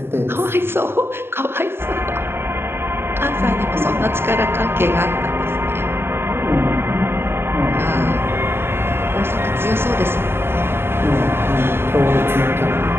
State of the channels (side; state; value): left; late; 0.11 ms